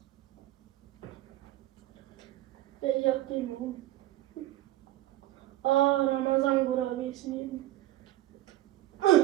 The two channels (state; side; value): quieter; left; 15.1 dB